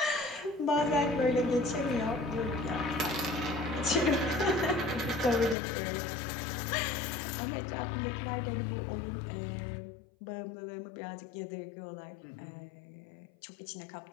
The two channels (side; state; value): right; drops out; at 5.6 s